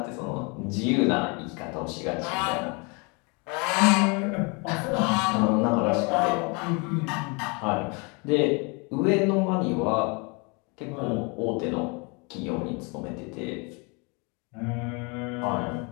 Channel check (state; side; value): quieter; right; 31.2 dB